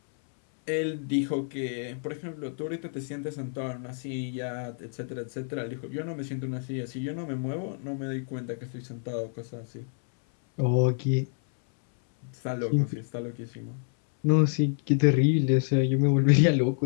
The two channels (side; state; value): right; silent; 59 dB below the other